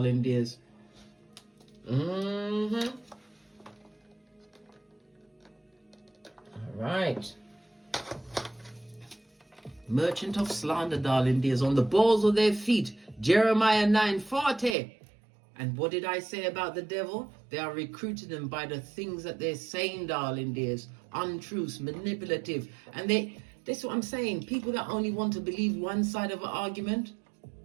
dears. Mm-hmm. All right. Merchant of slander, darling dears, on the balls of their feet. Jeremiah 9:40. And what did I say about the devil? They are recruiting them by the things that they're saying, darling dears. Untruths, manipulative. And that's what I'm saying. People that only want to believe one side of an argument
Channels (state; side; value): drops out; left; at 14.8 s